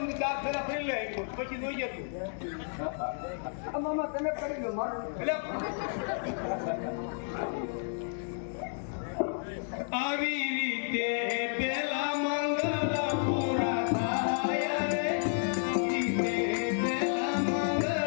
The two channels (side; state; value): right; silent; digital silence